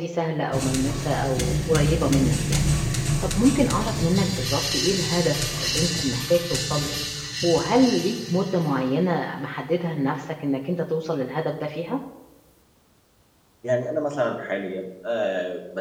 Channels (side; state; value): both; identical; correlation 1.00